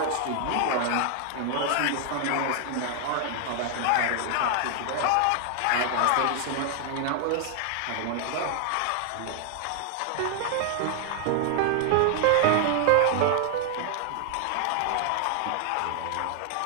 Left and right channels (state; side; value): different; both; correlation 0.00